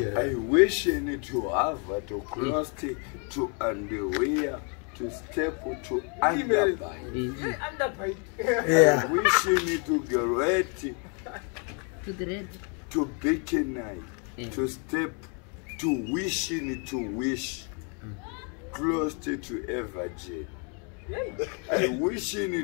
I wish to have to cross to underwear to step to underbite. yeah I wish to get To the red. to bikini to step to wishing to wish close to a virgin. I wishing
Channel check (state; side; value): quieter; right; 37.7 dB